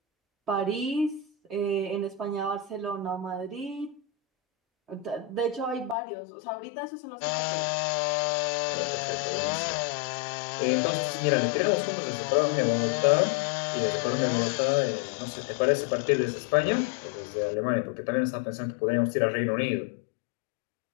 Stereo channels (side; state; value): right; drops out; at 6.0 s